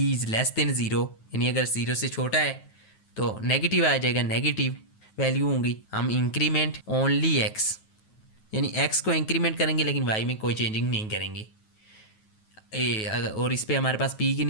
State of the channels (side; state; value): right; late; 9.3 ms